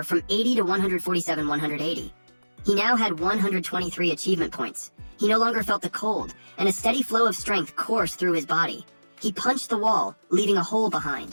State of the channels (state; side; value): inverted; both; correlation -1.00